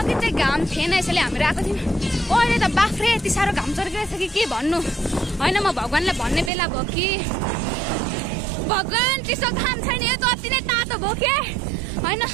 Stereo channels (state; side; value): drops out; left; at 6.5 s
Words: चाहिँ घाम थिएन यसैले हामीहरू आएको थियौँ। अहिले त बाफ्रे यति साह्रो घाम चर्किरहेछ कि के भन्नु होइन। म भगवान्लाई भन्ने बेला भयो कि भगवान् चिसो घाम छैन, यो त अति नै तातो भयो के होइन।